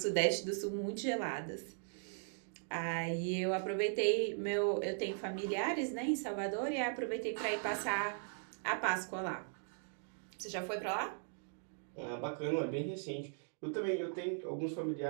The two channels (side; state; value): left; silent; digital silence